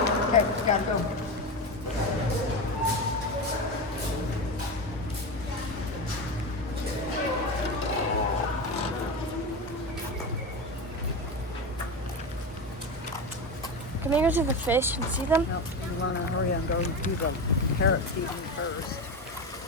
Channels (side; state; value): both; normal; correlation 0.20